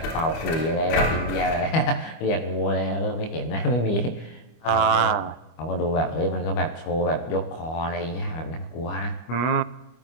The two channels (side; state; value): right; late; 25 ms